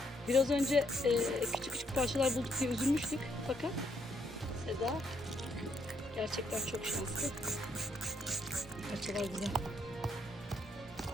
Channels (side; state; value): both; normal; correlation 0.73